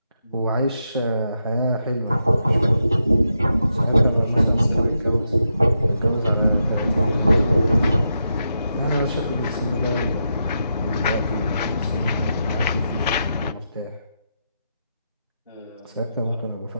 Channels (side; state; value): both; inverted; correlation -0.85